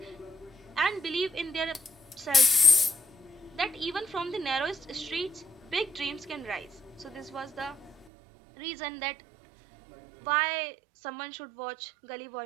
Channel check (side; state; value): left; drops out; at 8.1 s